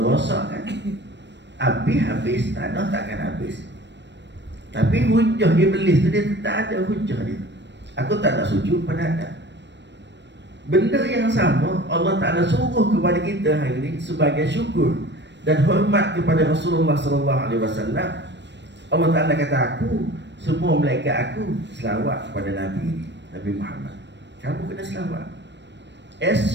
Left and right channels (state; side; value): late; left; 0.51 ms